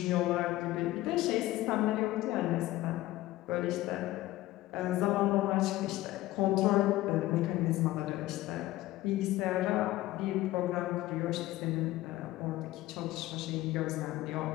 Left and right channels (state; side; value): quieter; right; 16.6 dB